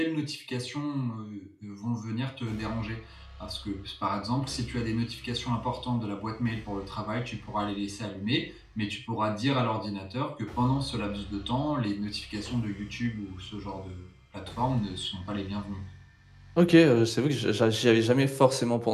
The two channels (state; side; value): identical; both; correlation 1.00